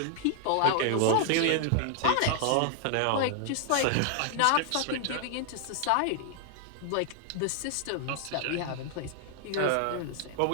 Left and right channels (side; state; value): both; different; correlation 0.00